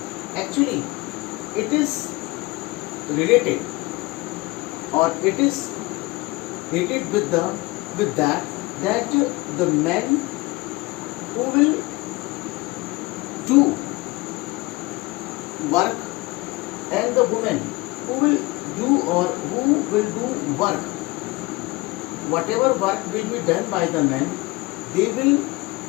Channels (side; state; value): right; quieter; 22.5 dB